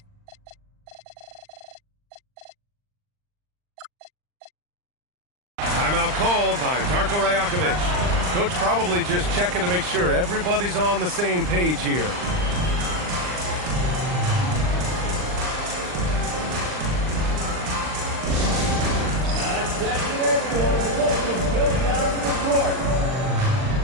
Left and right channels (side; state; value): left; late; 39 ms